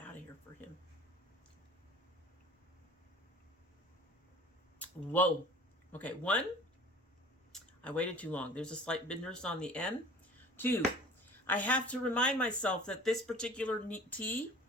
of here for him. Whoa. Okay, 1, I waited too long. There's a slight bitterness on the end. 2, I have to remind myself that this particular tea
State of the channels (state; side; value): normal; both; correlation 0.45